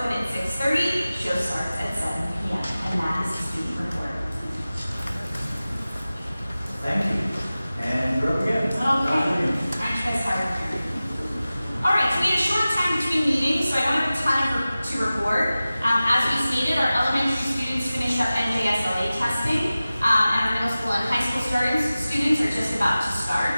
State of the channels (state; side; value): inverted; both; correlation -0.96